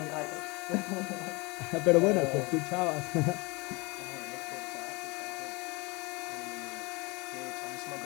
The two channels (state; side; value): quieter; right; 25.9 dB